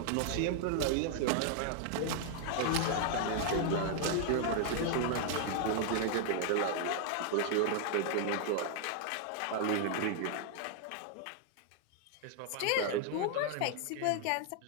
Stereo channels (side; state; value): both; different; correlation 0.00